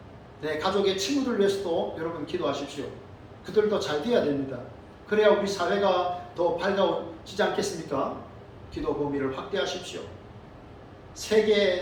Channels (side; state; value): both; identical; correlation 1.00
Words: 내 가족의 친구들 위해서도 여러분 기도하십시오. 그들도 잘 돼야 됩니다. 그래야 우리 사회가 더 밝아지지 않겠습니까? 기도 범위를 확대하십시오.